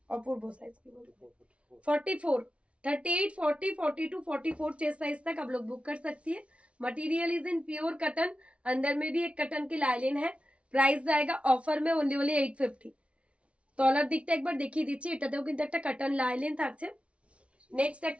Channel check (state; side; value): late; left; 0.061 ms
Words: অপূর্ব সাইজ, কি বলবো, 44, 38, 40, 42, 44 चेस्ट साइज तक आप लोग बुक कर सकती है। Material is in pure cotton, अंदर में भी एक कटन की लाइलिन है। প্রাইস জায়গা অফার মে ওনলি 850। তলার দিকটা একবার দেখিয়ে দিচ্ছি, এটাতেও কিন্তু একটা কাটন লাইলিন থাকছে। নেক্সট